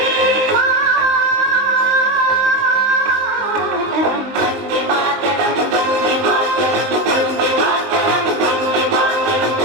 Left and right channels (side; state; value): left; late; 19 ms